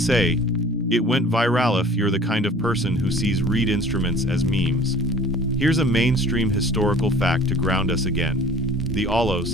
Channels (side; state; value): both; normal; correlation 0.48